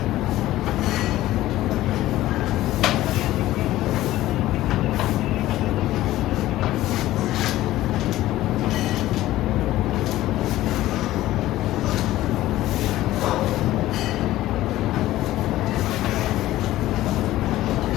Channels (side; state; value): right; quieter; 15.5 dB